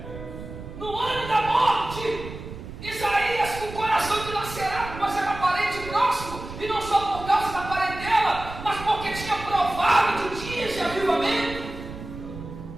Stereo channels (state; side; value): noise; right; rumble, 12 dB below the sound